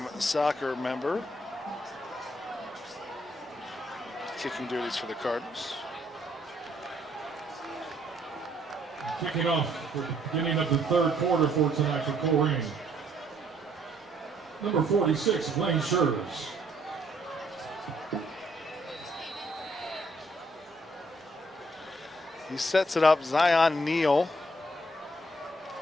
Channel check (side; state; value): both; normal; correlation 0.67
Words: soccer member. Kicking duties for the Cardinals. Kicking off for the beginning of the third quarter for tonight for Colerain. Number 46, Blaine Scherz. He sets it up, Zion Neal.